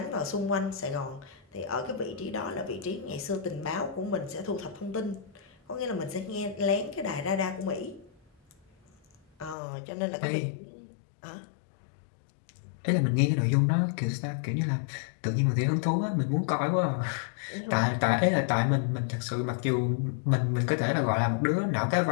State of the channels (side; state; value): right; drops out; at 9.6 s